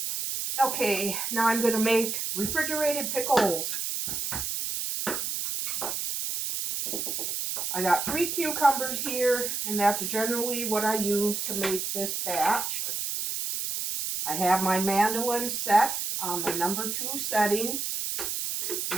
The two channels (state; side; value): noise; right; hiss, 2 dB below the sound